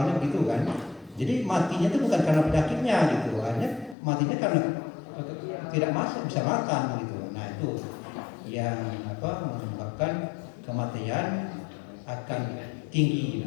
begitu kan. Jadi matinya itu bukan karena penyakitnya gitu, hanya matinya karena tidak masuk bisa makan gitu. Nah itu yang menyebabkan kematian akan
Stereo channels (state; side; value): drops out; right; at 4.0 s